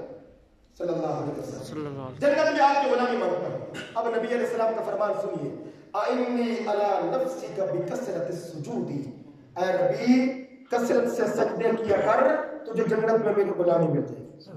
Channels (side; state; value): both; identical; correlation 1.00